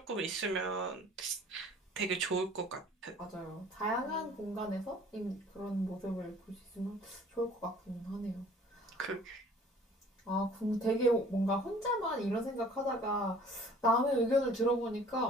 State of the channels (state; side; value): normal; both; correlation 0.52